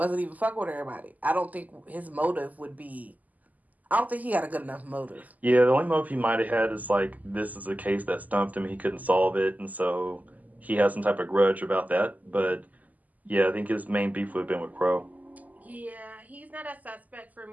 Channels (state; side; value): late; left; 0.079 ms